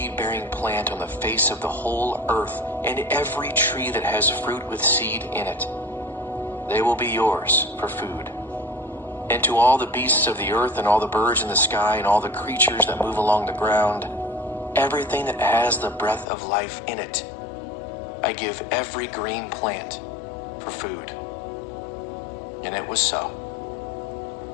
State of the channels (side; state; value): right; drops out; at 16.2 s